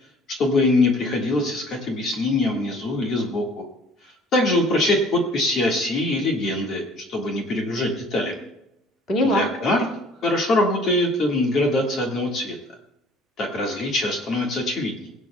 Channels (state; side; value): normal; both; correlation 0.53